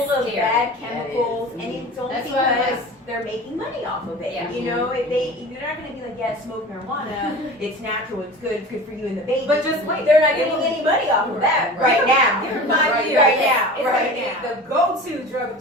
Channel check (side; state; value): both; normal; correlation 0.36